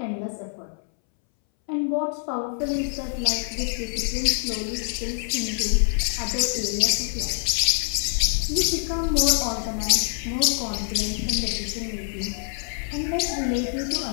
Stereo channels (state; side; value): silent; right; 62 dB below the other